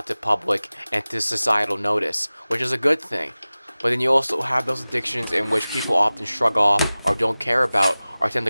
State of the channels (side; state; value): both; inverted; correlation -0.98